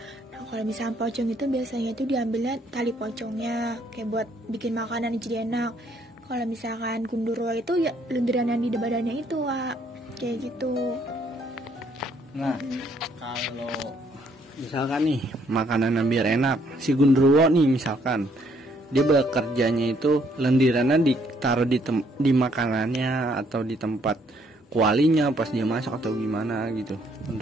Nah, kalau misalkan pocong itu biasanya itu diambilnya tali pocongnya kayak buat bikin makanan jadi enak. Kalau misalkan gundurwo itu ya lendiran yang di badannya itu, Wak. Kayak gitu. Nah, kalau misalkan nih makanan yang biar enak, si gundurwo nih misalkan dia bekerjanya itu lendirannya ditaruh di makanannya atau di tempat kualinya pas dia masak atau gimana gitu.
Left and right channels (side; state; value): both; normal; correlation 0.67